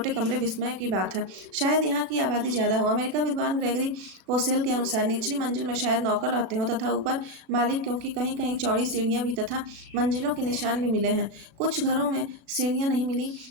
कमरे विस्मय की बात है। शायद यहाँ की आबादी ज़्यादा हो। अमेरिका विद्वान ग्रेगरी पोसेल के अनुसार निचली मंजिल में शायद नौकर रहते हों तथा ऊपर मालिक, क्योंकि कहीं कहीं चौड़ी सीढ़ियाँ भी तथा मंजिलों के निशान भी मिले हैं। कुछ घरों में सीढ़ियाँ नहीं मिली,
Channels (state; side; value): late; left; 36 ms